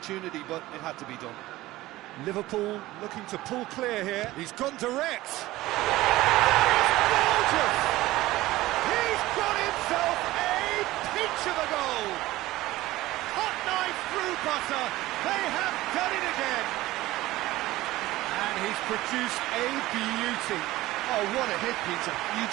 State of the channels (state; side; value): quieter; left; 17.4 dB